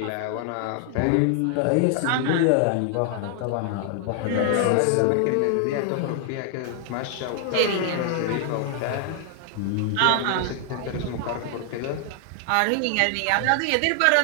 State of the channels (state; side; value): different; both; correlation 0.00